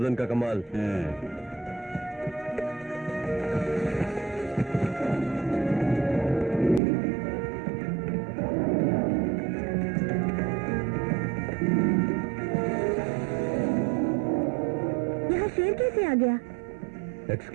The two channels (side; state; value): left; drops out; at 6.8 s